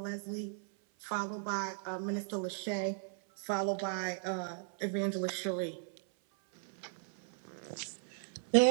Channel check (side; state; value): left; silent; 53 dB below the other